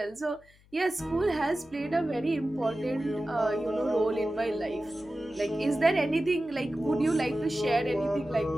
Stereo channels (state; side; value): noise; left; hum, 29 dB below the sound